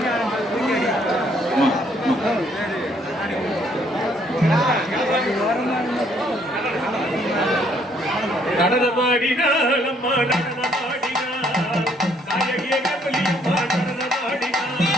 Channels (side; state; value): both; normal; correlation 0.66